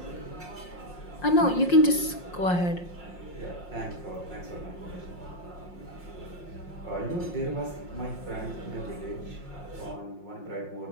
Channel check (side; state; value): right; late; 5.6 ms